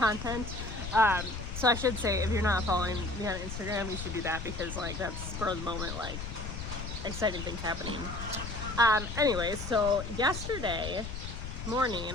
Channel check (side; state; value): left; noise; rumble, 7 dB below the sound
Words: So I should say, if you're not following me on Instagram, you should do that because like that's spur of the moment, like exciting things happening. Anyways, so yesterday